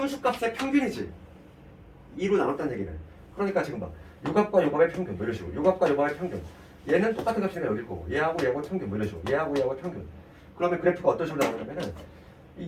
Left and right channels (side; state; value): both; identical; correlation 1.00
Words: 평균이지. 2로 나눴다는 얘기는. 그러니까 지금 봐. 요 값과 요 값의 평균 뭐 이런 식으로. 요 값과 요 값의 평균. 얘는 똑같은 값이니까 여길 거고 얘하고 얘하고 평균 뭐 이런 식으로. 얘하고 얘하고 평균. 그러면 그래프가 어떤 식으로 나오냐면은